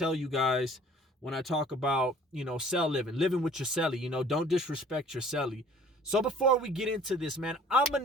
you guys when I talk about, cell living with your celly. Don't disrespect your celly. So before we get into this, man, I'm gonna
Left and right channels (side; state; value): both; normal; correlation 0.52